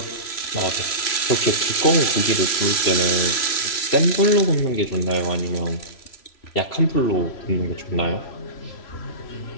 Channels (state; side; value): late; right; 3.0 ms